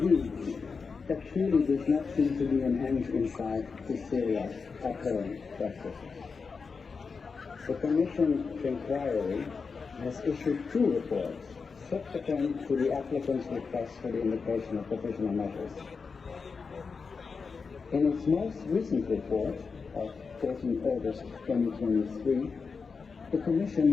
there truly does not seem to be an end in sight to Syria's current practices. The Commission's inquiry has issued 2 reports subsequent to the applicant's request for the invocation of provisional measures. In its most recent report of 14 August 2023, the Commission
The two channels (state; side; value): quieter; right; 5.0 dB